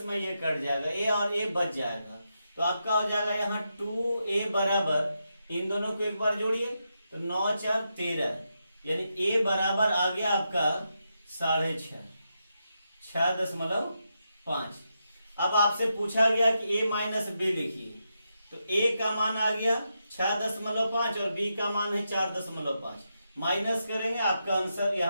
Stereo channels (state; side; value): inverted; both; correlation -0.85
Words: में ये कट जाएगा, a और a बच जाएगा। तो आपका हो जाएगा यहाँ 2a बराबर, इन दोनों को एक बार जोड़िए तो 9 4 13, यानी a बराबर आ गया आपका 6.5। 6.5। अब आपसे पूछा गया कि a माइनस बी लिखिए, तो a का मान आ गया 6.5 और b का मान है 4.5। माइनस करेंगे, आपका आंसर